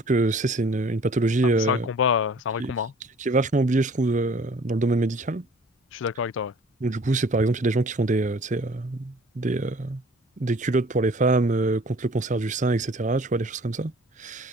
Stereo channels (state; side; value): normal; both; correlation 0.51